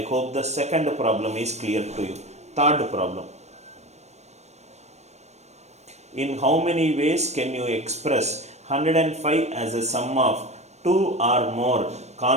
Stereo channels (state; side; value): late; left; 0.32 ms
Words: hope the second problem is clear to you. Third problem. In how many ways can you express 105 as a sum of 2 or more